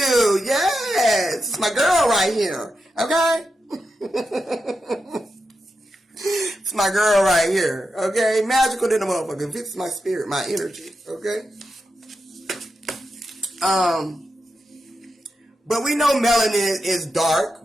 Yes. It's my girl right here, okay? It's my girl right here, okay? Magical than a motherfucker. Fits my spirit, my energy, okay? But we know melanin is dark.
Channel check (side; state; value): both; normal; correlation 0.88